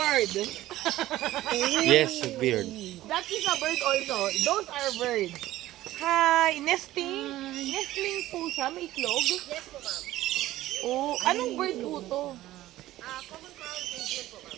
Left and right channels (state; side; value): quieter; left; 15.2 dB